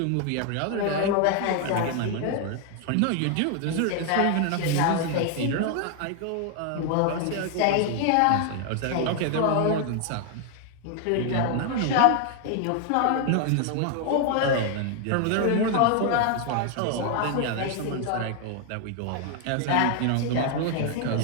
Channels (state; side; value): different; both; correlation 0.00